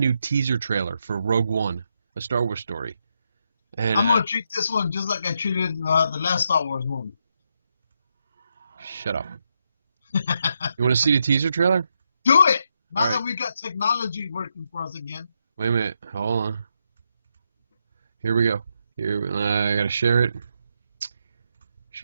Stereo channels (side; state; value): both; inverted; correlation -0.81